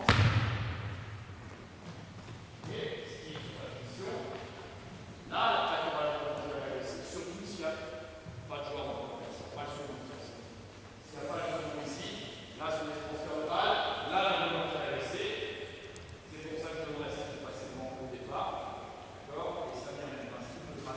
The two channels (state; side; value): identical; both; correlation 1.00